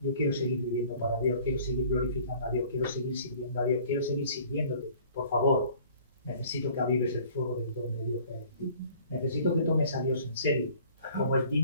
quiero seguir viviendo para Dios, quiero seguir glorificando a Dios, quiero seguir sirviendo a Dios, quiero seguir sirviéndote. Por favor, necesito que avives el fuego del don de Dios que hay en ti. Necesito que tomes a Dios en serio, como es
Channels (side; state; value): both; inverted; correlation -0.52